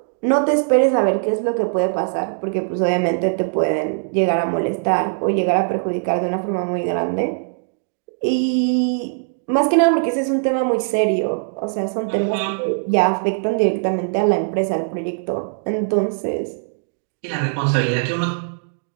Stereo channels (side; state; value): left; silent; digital silence